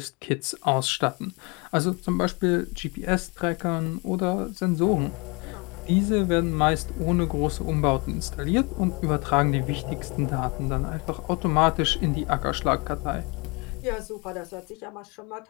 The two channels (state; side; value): quieter; right; 29.4 dB